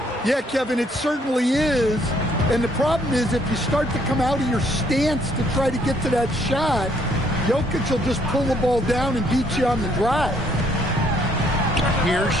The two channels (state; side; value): normal; both; correlation 0.67